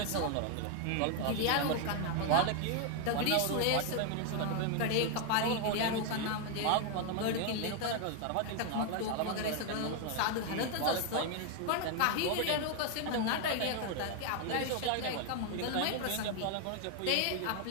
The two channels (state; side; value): different; both; correlation 0.01